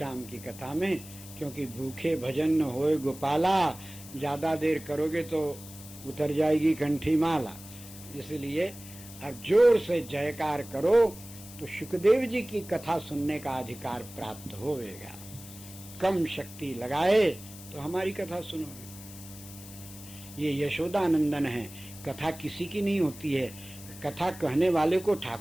की कथा में, क्योंकि भूखे भजन न होए गोपाला, ज्यादा देर करोगे तो उतर जाएगी कंठी माला, इसलिए अब जोर से जयकार करो तो सुखदेव जी की कथा सुनने का अधिकार प्राप्त होगा। कम शक्ति लगाए तो हमारी कथा सुनोगे। ये यशोदानंदन है, कथा किसी की नहीं होती है, कथा कहने वाले को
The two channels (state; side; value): noise; left; hiss, 16 dB below the sound